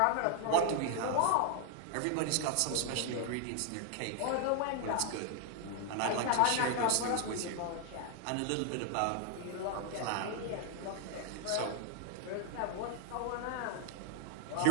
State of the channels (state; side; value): different; both; correlation 0.00